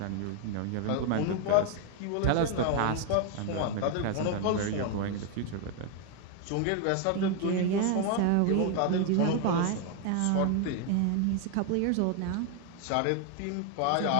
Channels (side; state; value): both; different; correlation 0.01